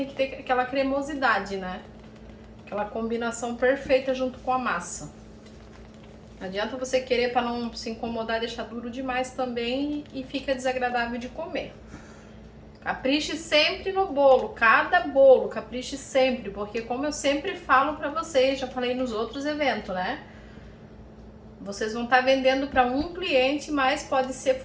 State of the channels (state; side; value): identical; both; correlation 1.00